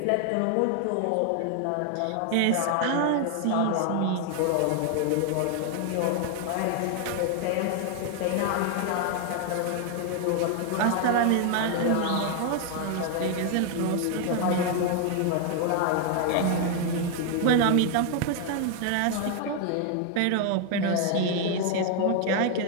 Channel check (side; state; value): both; different; correlation 0.00